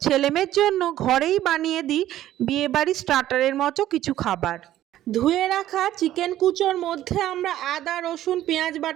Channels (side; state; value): left; quieter; 13.2 dB